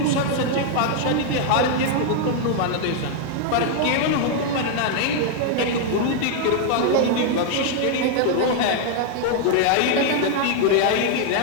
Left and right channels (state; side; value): different; both; correlation 0.00